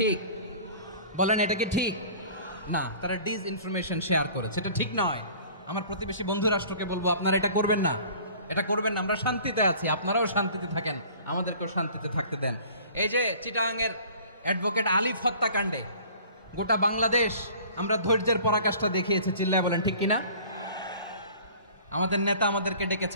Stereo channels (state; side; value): inverted; both; correlation -0.48